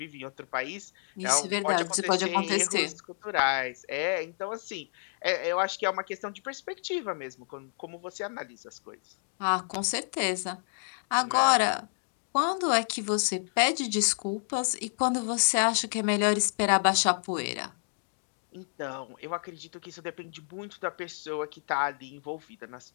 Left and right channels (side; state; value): right; silent; digital silence